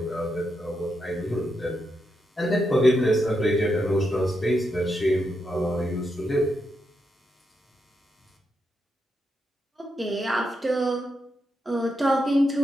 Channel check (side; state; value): both; normal; correlation 0.84